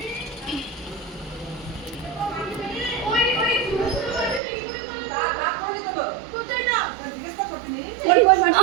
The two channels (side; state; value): left; drops out; at 4.4 s